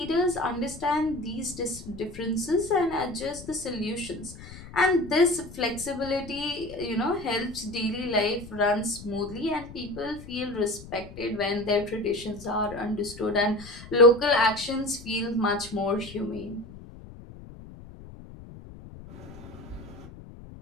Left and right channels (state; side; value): noise; left; rumble, 16 dB below the sound